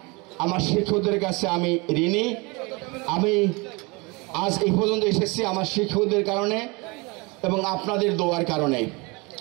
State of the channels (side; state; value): left; quieter; 27.1 dB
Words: আমার শিক্ষকদের কাছে আমি ঋণী। আমি আজ এই পর্যন্ত এসেছি আমার শিক্ষকদের কারণে এবং আপনাদের দোয়ার কারণে।